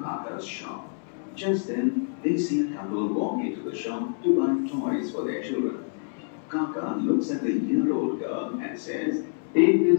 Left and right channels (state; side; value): silent; right; 60 dB below the other